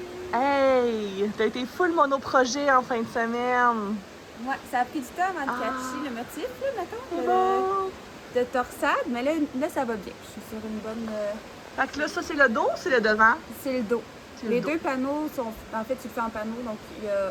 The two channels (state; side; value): identical; both; correlation 1.00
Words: Hey! T'as été full monoprojet en fin de semaine. Ouais, ça a pris du temps avant de catcher le motif, là, mettons, Bon. de torsade. Mais là, ça va bien. Je suis sur une bonne... Fait que là, ça, c'est le dos ou c'est le devant? C'est le dos. C'est le Les dos. deux panneaux sont... En fait, tu le fais en panneau, donc